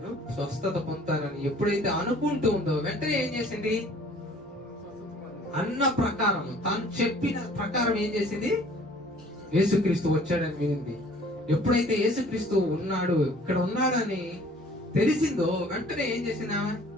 స్వస్థత పొందుతానని ఎప్పుడైతే అనుకుంటూ ఉందో, వెంటనే ఏం చేసింది? అన్న ప్రకారం, తాను చెప్పిన ప్రకారం ఏం చేసింది? యేసుక్రీస్తు వచ్చాడని వినింది. ఎప్పుడైతే యేసుక్రీస్తు ఉన్నాడు, ఇక్కడ ఉన్నాడని తెలిసిందో వెంటనే ఏం చేసింది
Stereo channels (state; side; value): normal; both; correlation 0.53